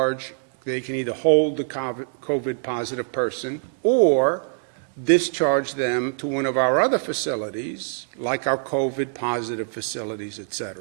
they can either hold the COVID positive person or discharge them to one of our other facilities, like our COVID positive facilities, et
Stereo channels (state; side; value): silent; left; digital silence